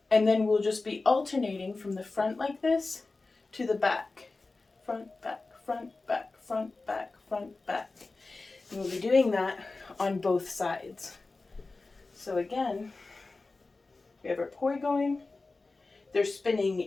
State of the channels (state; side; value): quieter; right; 3.6 dB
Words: And then we'll just be alternating from the front like this to the back. Front, back, front, back, front, back, front, back. And we'll be doing that on both sides. So again, we have our poi going. They're spinning